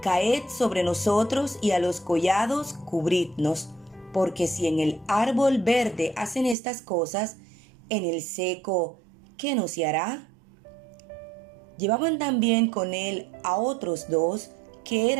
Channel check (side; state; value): left; drops out; at 6.6 s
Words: caed sobre nosotros, y a los collados cubridnos. Porque si en el árbol verde hacen estas cosas, en el seco, ¿qué no se hará?». Llevaban también con él a otros dos que